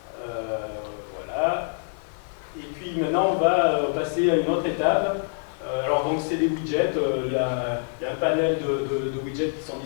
Voilà. puis maintenant, on va passer à une autre étape. Alors, donc, c'est des widgets. Il y a un panel de widgets qui sont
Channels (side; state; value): right; silent; 61 dB below the other